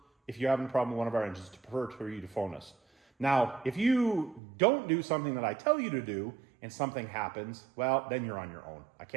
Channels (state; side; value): drops out; left; at 4.4 s